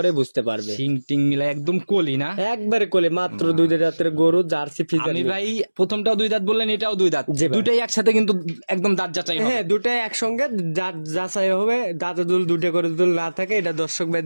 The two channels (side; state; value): both; inverted; correlation -1.00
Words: বুঝতে পারবে। সিং টিং মিলা একদম কলি না, একবারে কলি। মাত্র 2 দাঁতের গরু, জার্সি ফ্রিজিয়ান। আমি ভাই প্রথমটাও 2 দাঁত বললেন, এটাও 2 দাঁত, দুটাই একসাথে কিন্তু একদম দাঁত যাচাই হবে। হ্যাঁ, দুটাই একসঙ্গে দাঁত যাচাই হবে। দাঁতে দুল দুটো করে দুল না থাকে, এটা দর্শক